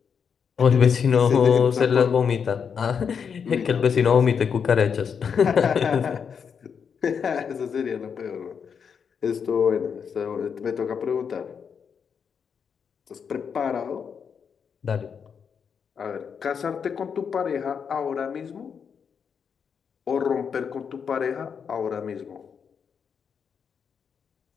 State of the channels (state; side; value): quieter; right; 6.7 dB